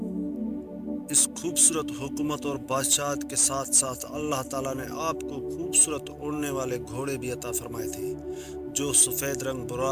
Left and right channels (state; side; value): identical; both; correlation 1.00